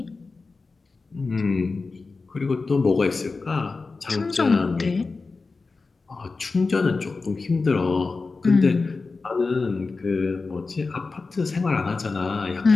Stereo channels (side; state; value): right; quieter; 4.0 dB